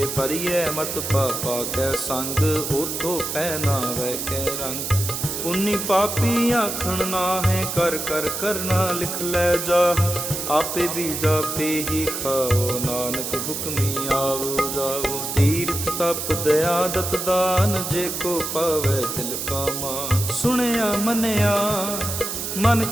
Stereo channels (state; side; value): noise; right; hiss, 4 dB below the sound